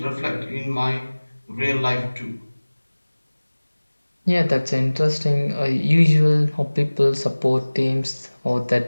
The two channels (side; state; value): both; inverted; correlation -1.00